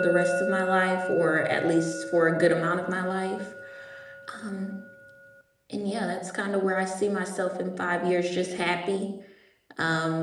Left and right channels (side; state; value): both; identical; correlation 1.00